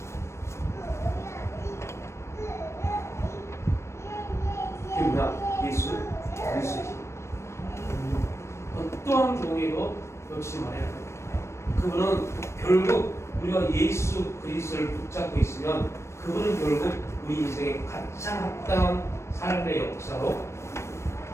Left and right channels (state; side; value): late; right; 0.13 ms